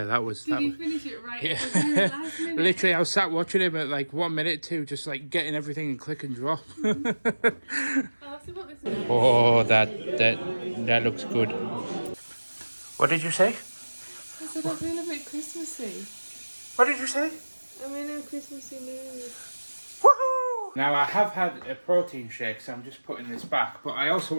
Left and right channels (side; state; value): both; inverted; correlation -1.00